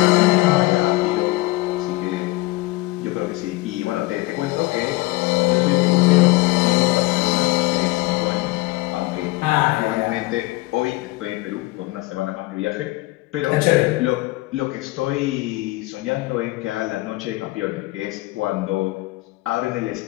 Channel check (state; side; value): quieter; right; 20.8 dB